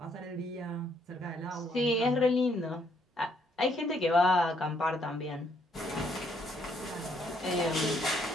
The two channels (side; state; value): both; normal; correlation 0.70